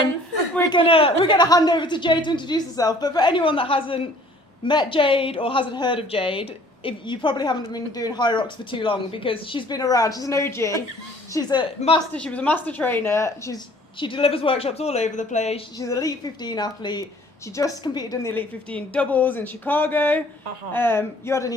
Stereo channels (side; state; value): both; normal; correlation 0.55